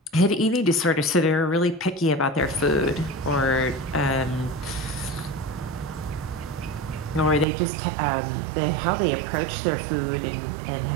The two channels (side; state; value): left; drops out; at 7.5 s